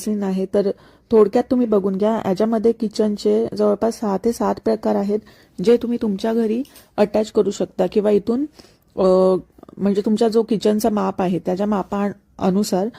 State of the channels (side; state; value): both; identical; correlation 1.00